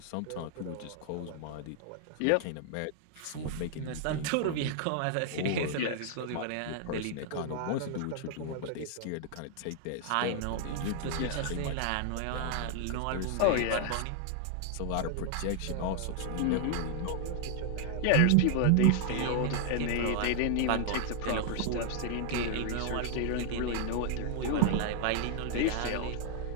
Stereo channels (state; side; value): different; both; correlation 0.00